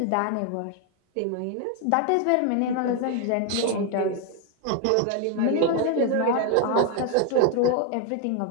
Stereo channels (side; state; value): both; different; correlation 0.01